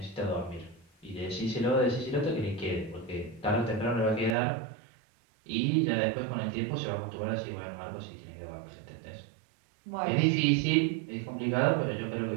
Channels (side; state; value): left; drops out; at 4.4 s